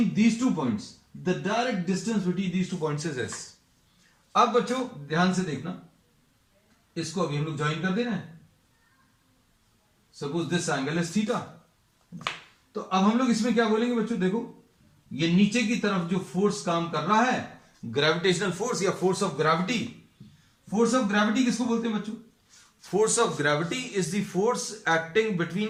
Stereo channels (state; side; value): identical; both; correlation 1.00